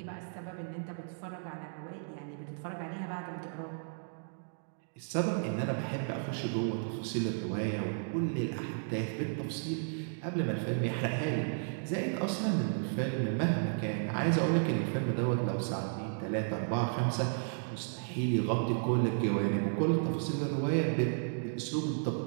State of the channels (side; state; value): left; silent; digital silence